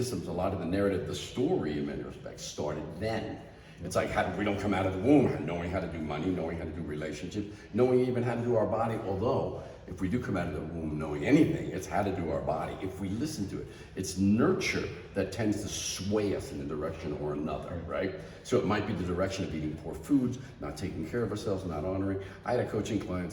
a lot of the narrative, the story in many respects started then. It's like we don't come out of the womb knowing how to do money, knowing how to do relationships, knowing even how to do our body. Although, if we do come out of the womb knowing anything, it's how to do our body. If we listen to it, it's nurture that tends to sway us in a direction or another, right? So it might be the direction of eating poor foods, not taking care of ourselves, not honoring. I had a coaching client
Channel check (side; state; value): both; identical; correlation 1.00